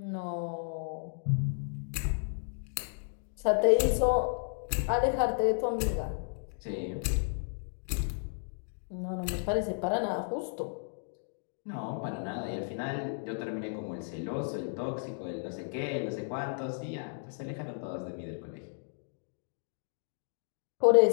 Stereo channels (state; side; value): silent; right; digital silence